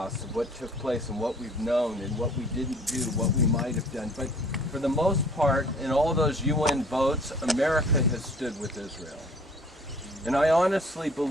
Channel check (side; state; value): both; normal; correlation 0.53